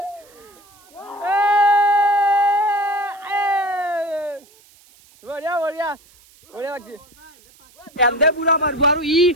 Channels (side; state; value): right; noise; hiss, 28 dB below the sound